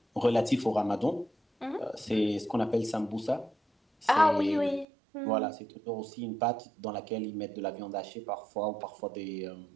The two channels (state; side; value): drops out; left; at 4.9 s